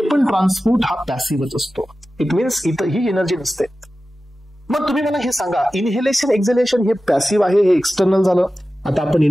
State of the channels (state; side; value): normal; both; correlation 0.94